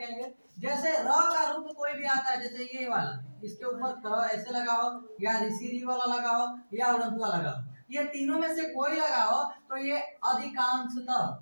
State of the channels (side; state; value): both; inverted; correlation -1.00